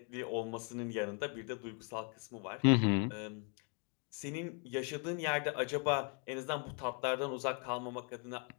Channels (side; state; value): right; quieter; 38.4 dB